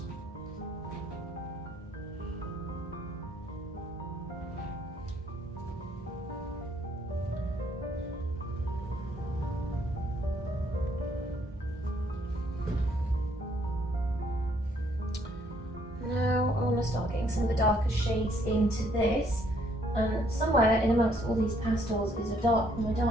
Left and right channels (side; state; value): both; normal; correlation 0.67